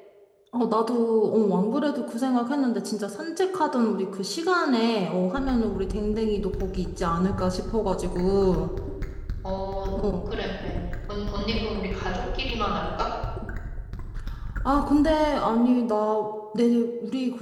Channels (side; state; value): both; identical; correlation 1.00